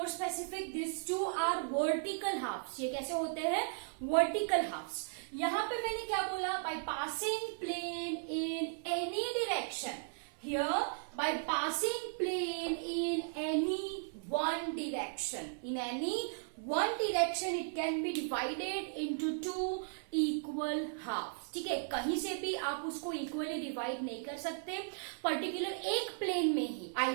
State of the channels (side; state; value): left; silent; 54 dB below the other